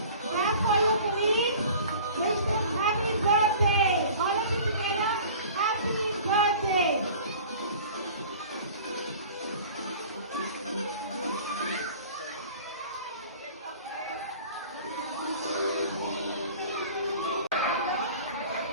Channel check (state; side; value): inverted; both; correlation -0.44